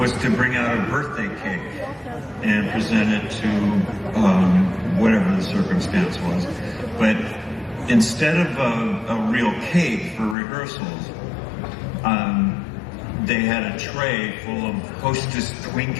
to bring out a birthday cake and present it to whatever the circumstance was. But instead of a real cake for rehearsals, they had a tray full of Hostess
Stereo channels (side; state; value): right; drops out; at 10.4 s